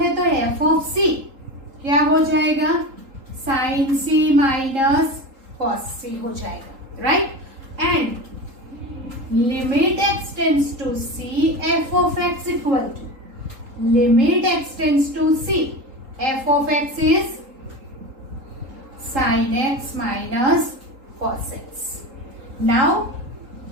तो f of c क्या हो जाएगा? sin c minus cos c हो जाएगा, right? And limit x tends to c, f of x equal to, limit x tends to c, f of x is sin x minus cos x. Now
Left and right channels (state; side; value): late; left; 3.8 ms